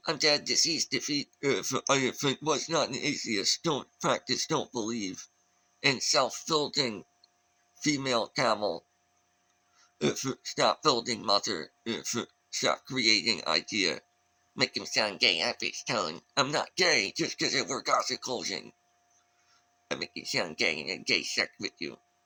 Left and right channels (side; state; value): both; identical; correlation 1.00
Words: I'm dead, deceased, defeat. If I was not an atheist, don't practice, don't believe in self-building female camel. Stop building mother. Stop creating idea. Make him sound gay at his tone. I'm not gay just because I wear gothic clothing. I make you sound gay and gay sex with you.